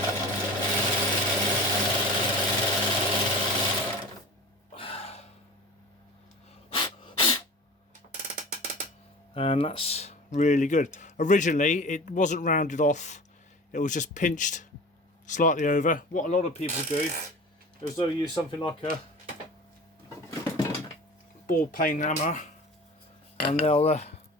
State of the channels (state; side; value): normal; both; correlation 0.38